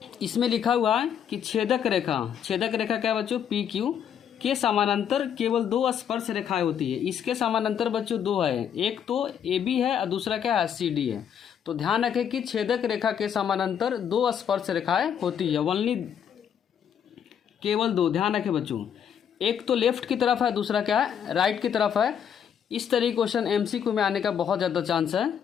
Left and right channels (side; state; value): right; quieter; 8.5 dB